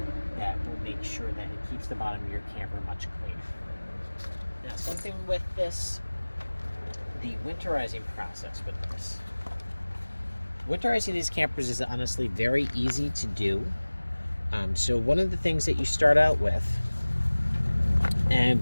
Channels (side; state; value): both; inverted; correlation -1.00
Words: that will make sure that it keeps the bottom of your camper much cleaner. Now, something with this, the winterizing process with this. Winterizing these campers is honestly very easy to do. So one of the things that you start out with, and